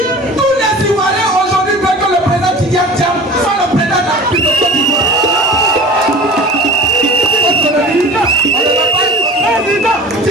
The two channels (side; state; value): both; normal; correlation 0.38